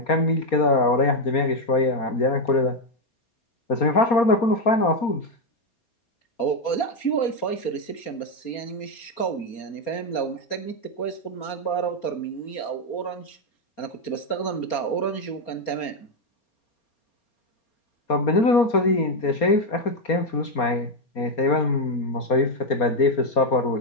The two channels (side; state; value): right; late; 4.3 ms